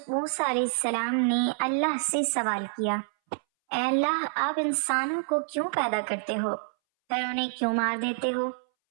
موسیٰ علیہ السلام نے اللہ سے سوال کیا، اے اللہ، آپ انسانوں کو کیوں پیدا کرتے ہو پھر انہیں کیوں مار دیتے ہو؟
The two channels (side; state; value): left; silent; 60 dB below the other